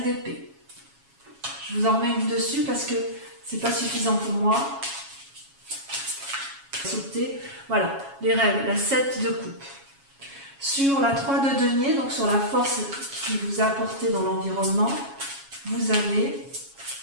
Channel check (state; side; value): late; left; 7.3 ms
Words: d'épée. Je vous en remets une dessus parce que c'est pas suffisant pour moi. Sauter. Voilà, les rêves, la 7 de coupe. Sur la 3 de denier, donc sur la force qui vous a apporté dans l'environnement, vous avez